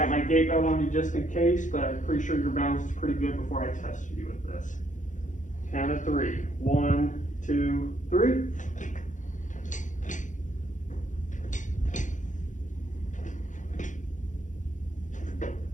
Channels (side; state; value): right; late; 0.36 ms